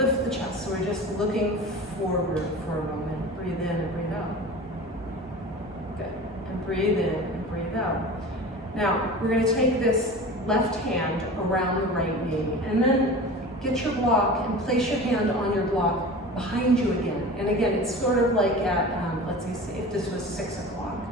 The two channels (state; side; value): normal; both; correlation 0.35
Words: the chest, so we're just looking forward for a moment. Breathe in and breathe out. Good. And breathe in and breathe out. Now, we're going to take this left hand around the right knee, and then get your block and place your hand on your block behind you again. And again, it's sort of like at, let's see if this was 6 o'clock.